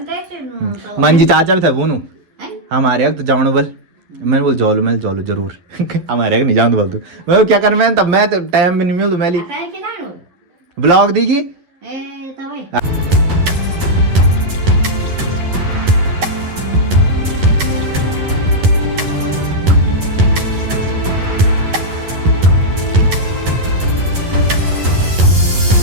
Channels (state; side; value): late; left; 11 ms